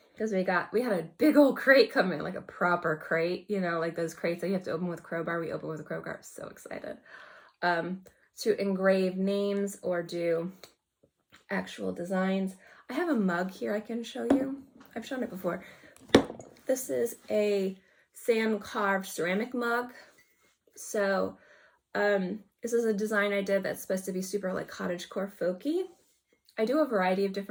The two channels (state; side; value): identical; both; correlation 1.00